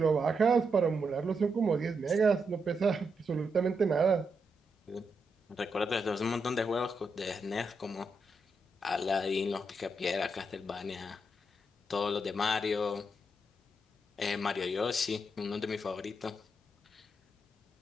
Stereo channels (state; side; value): normal; both; correlation 0.82